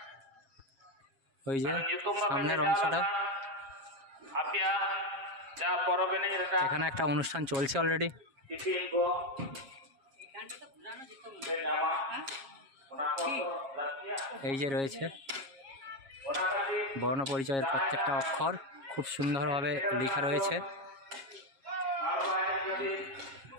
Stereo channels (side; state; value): left; late; 7.3 ms